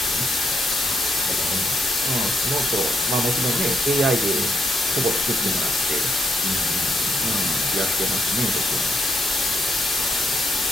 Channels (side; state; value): both; normal; correlation 0.78